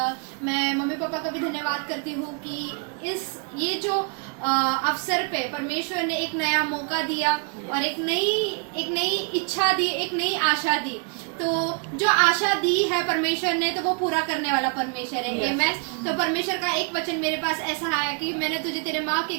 मैं मम्मी पापा का भी धन्यवाद करती हूँ कि ये जो अवसर पे परमेश्वर ने एक नया मौका दिया और एक नई इच्छा दी, एक नई आशा दी। तो जो आशा दी है परमेश्वर ने, तो वो पूरा करने वाला परमेश्वर है। आमीन। तो परमेश्वर का एक वचन मेरे पास ऐसा है कि मैंने तुझे तेरे माँ के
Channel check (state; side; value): quieter; left; 37.5 dB